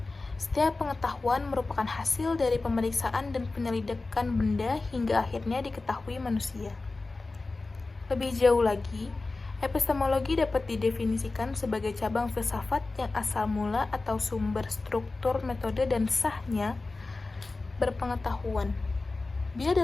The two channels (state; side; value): quieter; right; 3.5 dB